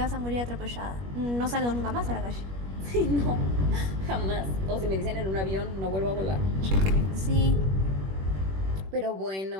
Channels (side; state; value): left; late; 21 ms